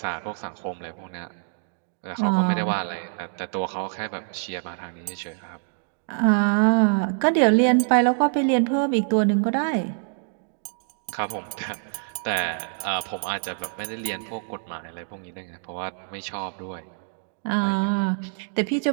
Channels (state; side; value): silent; left; digital silence